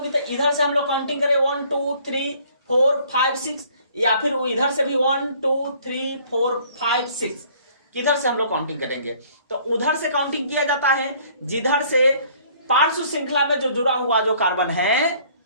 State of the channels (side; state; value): both; inverted; correlation -0.58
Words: तो इधर से हम लोग काउंटिंग करें 1 2 3 4 5 6, या फिर वो इधर से भी 1 2 3 4 5 6, किधर से हम लोग काउंटिंग करेंगे, तो उधर से काउंटिंग किया जाता है जिधर से पार्श्व श्रृंखला में जो जुड़ा हुआ जो कार्बन है,